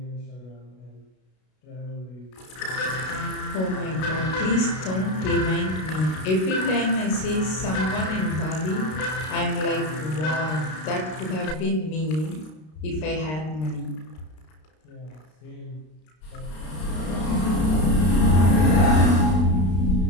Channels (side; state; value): right; late; 32 ms